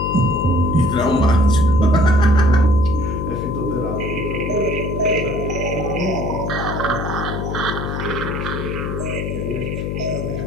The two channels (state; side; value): noise; left; hum, 3 dB below the sound